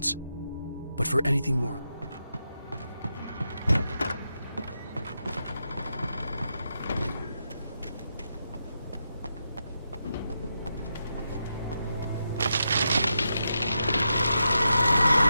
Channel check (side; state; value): both; inverted; correlation -0.85